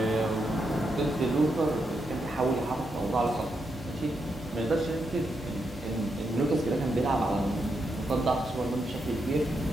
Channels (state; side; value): normal; both; correlation 0.83